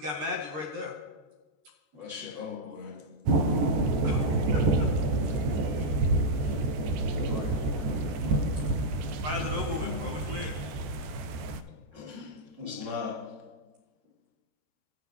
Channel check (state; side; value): late; left; 14 ms